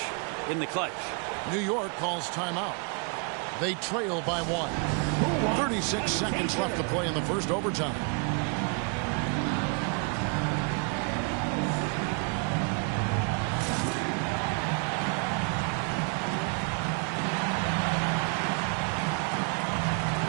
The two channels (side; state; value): left; quieter; 37.4 dB